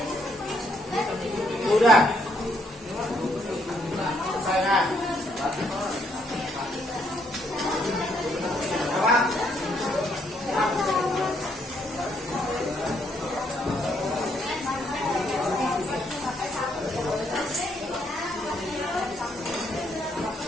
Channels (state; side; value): normal; both; correlation 0.72